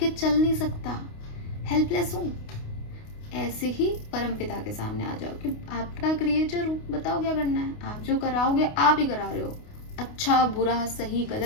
चल नहीं सकता, हेल्पलेस हूँ। ऐसे ही परमपिता के सामने आ जाओ कि आपका क्रिएटर हूँ, बताओ क्या करना है। आप जो कराओगे आप ही करा रहे हो, अच्छा बुरा सही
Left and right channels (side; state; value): right; late; 29 ms